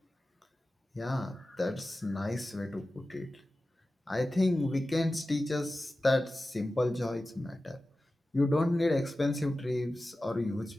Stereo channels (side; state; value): both; normal; correlation 0.95